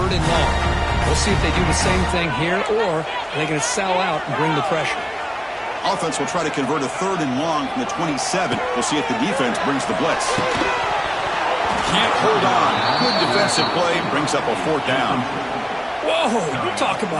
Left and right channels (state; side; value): identical; both; correlation 1.00